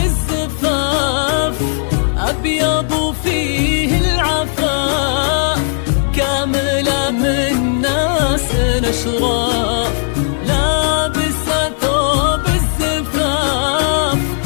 أبيض وفيه العفاف، كاملة من ناس أشراف. لابسة ثوب الزفاف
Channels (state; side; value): silent; right; digital silence